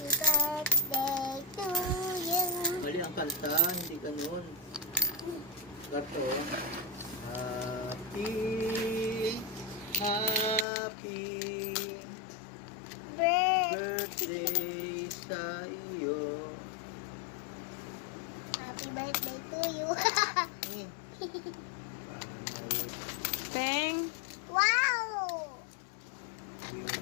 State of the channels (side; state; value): right; drops out; at 10.7 s